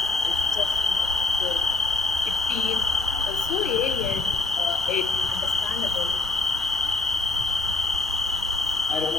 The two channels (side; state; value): right; quieter; 3.6 dB